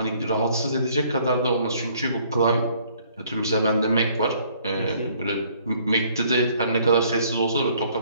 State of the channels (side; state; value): both; inverted; correlation -0.61